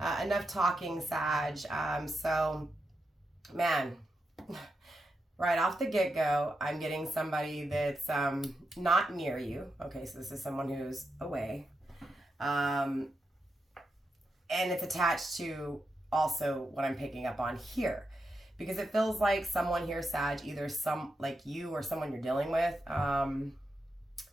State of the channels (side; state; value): both; normal; correlation 0.87